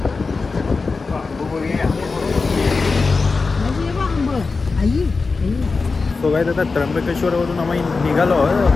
तो काय आता त्र्यंबकेश्वरवरून आम्ही निघालो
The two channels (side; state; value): right; quieter; 4.2 dB